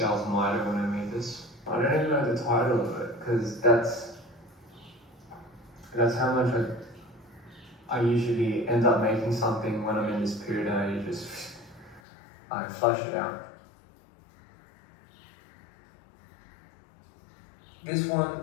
I was Mito when I made this. I don't even know the title of it, because that's how much I usually end up making something when I'm in this period and I flush it out. This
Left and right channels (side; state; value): right; drops out; at 12.0 s